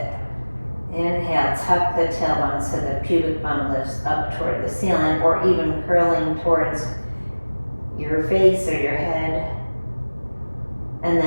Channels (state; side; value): inverted; both; correlation -1.00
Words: Inhale, tuck the tailbone so the pubic bone lifts up toward the ceiling, or even curling towards your face or your head. And